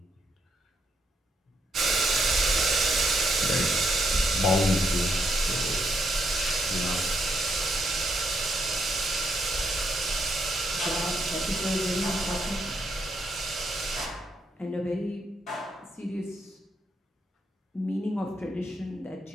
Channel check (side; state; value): both; normal; correlation 0.77